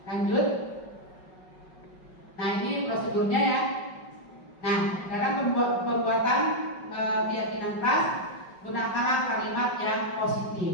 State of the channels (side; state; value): right; late; 5.3 ms